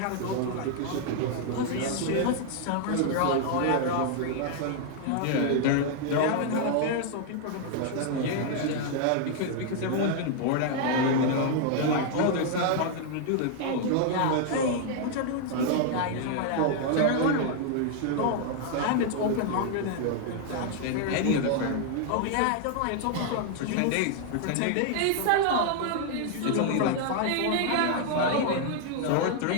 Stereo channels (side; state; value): both; different; correlation 0.00